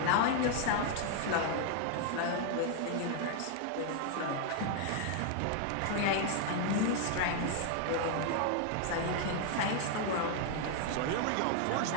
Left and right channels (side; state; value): both; different; correlation 0.00